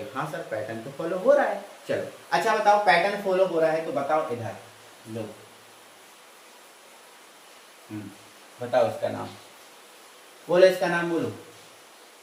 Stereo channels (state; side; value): identical; both; correlation 1.00